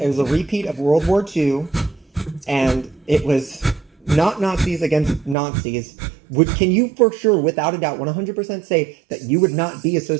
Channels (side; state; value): left; drops out; at 5.4 s